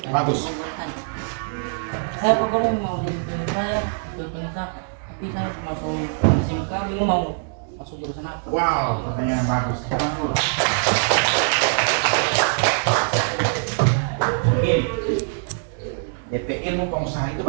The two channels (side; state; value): left; silent; digital silence